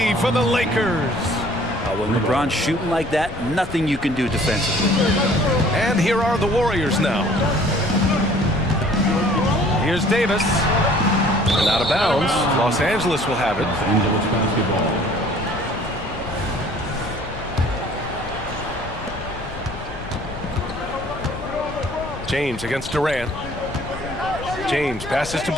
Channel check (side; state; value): left; noise; rumble, 12 dB below the sound